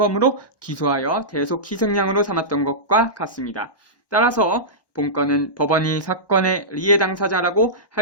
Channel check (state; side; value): late; right; 1.2 ms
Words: 기소하여 대속 희생양으로 삼았던 것과 같습니다. 따라서 본건은 법원이 사건의 리해 당사자라고